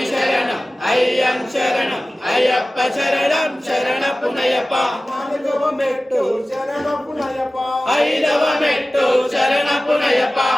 శరణం అయ్యం శరణం అయ్యప్ప శరణం శరణపునయప నాలుగవ మెట్టు శరణపునయప ఐదవ మెట్టు శరణపునయప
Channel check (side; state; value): both; normal; correlation 0.96